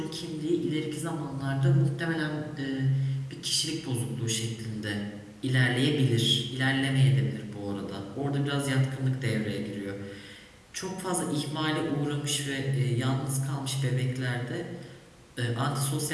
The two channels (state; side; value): identical; both; correlation 1.00